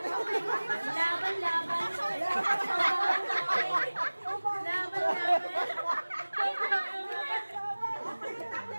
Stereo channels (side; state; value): both; inverted; correlation -1.00